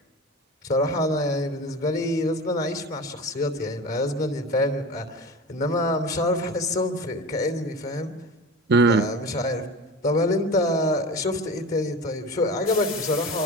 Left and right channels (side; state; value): both; normal; correlation 0.32